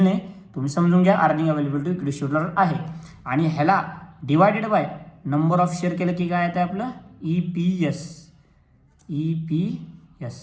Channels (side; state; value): both; identical; correlation 1.00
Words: नाही, तुम्ही समजून घ्या. Earning available to equity shareholder आहे, आणि ह्याला divided by number of share केलं की काय येतं आपलं EPS.